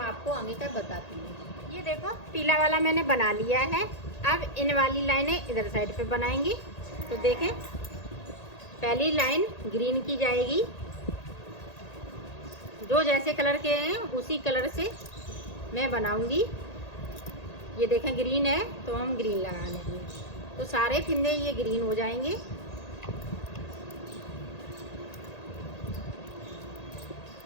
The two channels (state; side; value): late; right; 1.8 ms